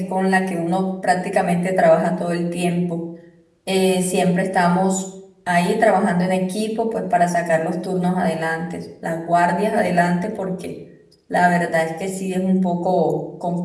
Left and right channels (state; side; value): identical; both; correlation 1.00